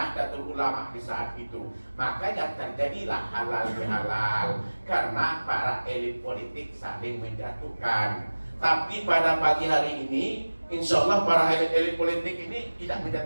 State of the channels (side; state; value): both; inverted; correlation -1.00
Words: Ulama di saat itu. Makanya terjadilah halal bihalal, karena para elit politik saling menjatuhkan. Tapi pada pagi hari ini, insya Allah para elit politik ini tidak